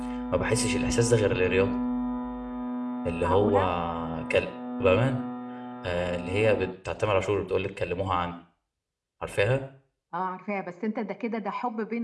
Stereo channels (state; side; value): identical; both; correlation 1.00